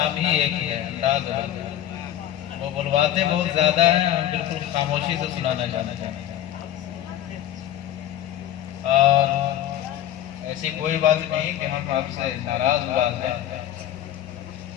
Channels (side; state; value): right; quieter; 11.8 dB